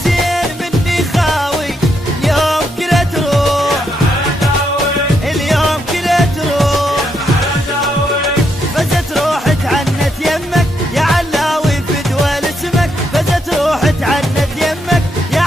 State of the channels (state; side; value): normal; both; correlation 0.79